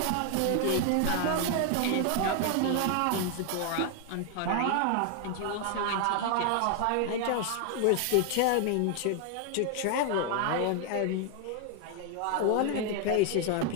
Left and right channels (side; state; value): both; different; correlation 0.00